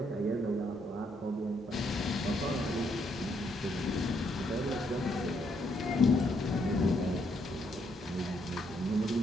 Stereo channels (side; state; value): both; normal; correlation 0.74